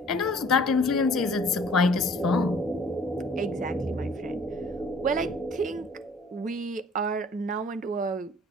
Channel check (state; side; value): normal; both; correlation 0.53